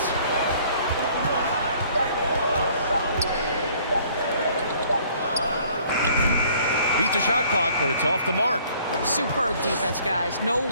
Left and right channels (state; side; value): inverted; both; correlation -0.57